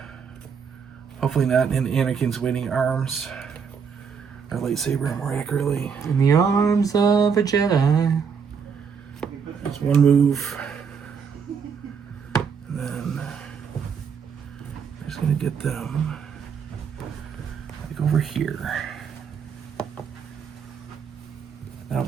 Hopefully not in Anakin's waiting arms. Or lightsaber, more accurately. In the arms of a Jedi. There's 1 move. And then I'm just going to get them like over here. That'll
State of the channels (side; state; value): left; quieter; 6.4 dB